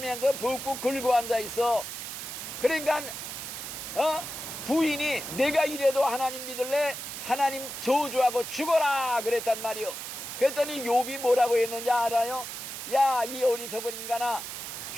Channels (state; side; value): noise; right; hiss, 8 dB below the sound